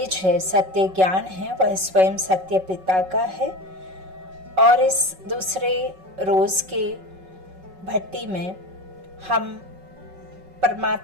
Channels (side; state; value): left; late; 5.4 ms